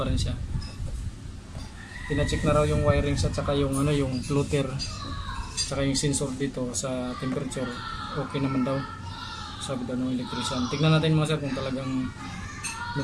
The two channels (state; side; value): identical; both; correlation 1.00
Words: rin siya. Pina-check na raw yung wirings at saka yung yung floater, saka yung sensor dito sa temperature, okay naman daw, sabi daw ng electrician. Tignan natin mga sir kung talagang